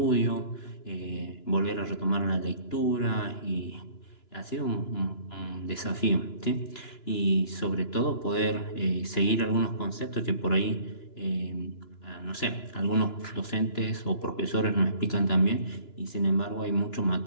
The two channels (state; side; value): late; right; 2.9 ms